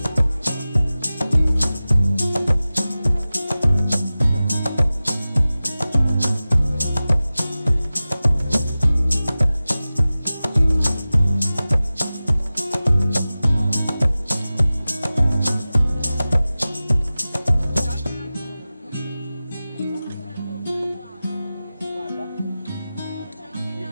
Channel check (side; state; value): both; inverted; correlation -0.96